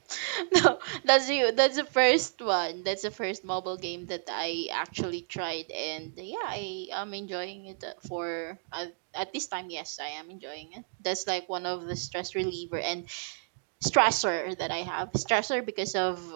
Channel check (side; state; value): left; silent; digital silence